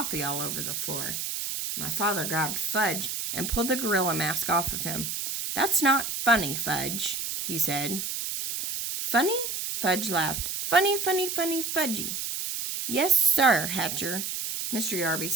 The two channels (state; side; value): noise; right; hiss, 3 dB below the sound